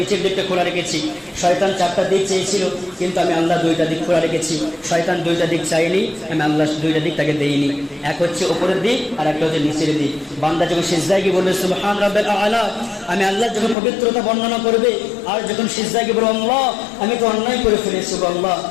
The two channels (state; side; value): drops out; right; at 13.8 s